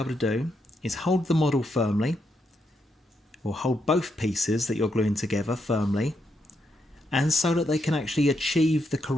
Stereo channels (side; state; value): both; normal; correlation 0.80